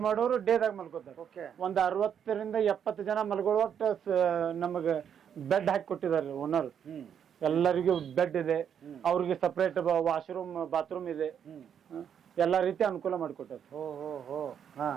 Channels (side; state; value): left; quieter; 8.3 dB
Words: ಮಾಡೋರು ಡೇದಾಗ ಮಲ್ಕೋತಾರೆ. ಒಂದ್ 60 ರಿಂದ 70 ಜನ ಮಲ್ಕೊಳ್ಳುವಷ್ಟು ನಮಗ ಬೆಡ್ ಹಾಕಿ ಕೊಟ್ಟಿದ್ದಾರೆ ಓನರ್. ಎಲ್ಲರಿಗೂ ಬೆಡ್ ಇದೆ, ಅವ್ರಿಗೆ ಸಪರೇಟ್ ವಾಶ್ರೂಮ್ ಬಾತ್ರೂಮ್ ಇದೆ, ಎಲ್ಲಾ ರೀತಿ ಅನುಕೂಲ ಮಾಡಿಕೊಟ್ಟಾರೆ.